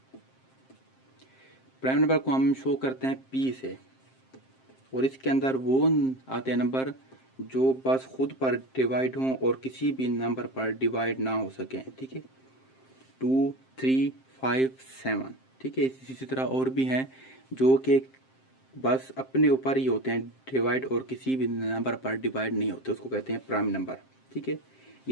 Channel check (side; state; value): right; late; 7.6 ms